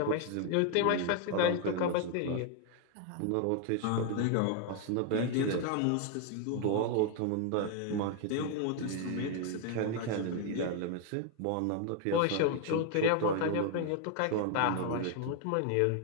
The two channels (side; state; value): both; different; correlation 0.00